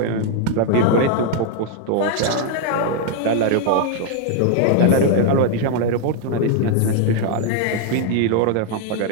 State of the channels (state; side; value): different; both; correlation 0.00